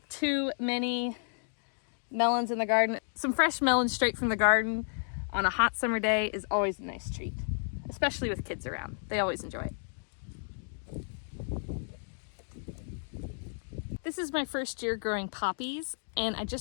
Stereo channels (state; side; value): silent; right; digital silence